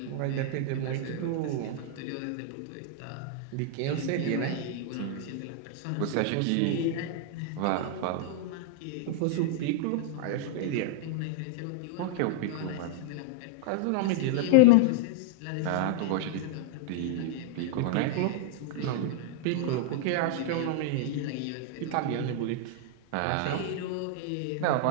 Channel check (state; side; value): different; both; correlation -0.01